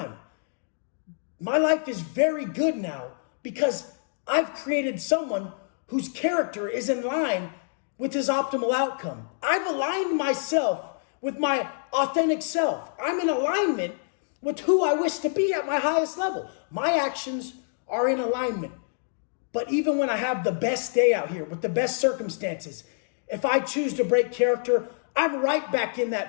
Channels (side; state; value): right; silent; digital silence